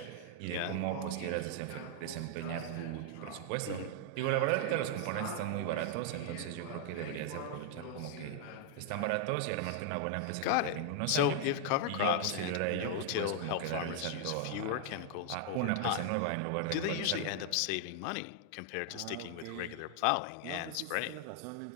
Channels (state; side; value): different; both; correlation 0.00